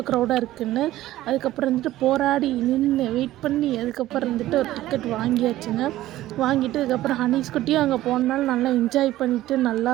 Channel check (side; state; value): left; quieter; 15.1 dB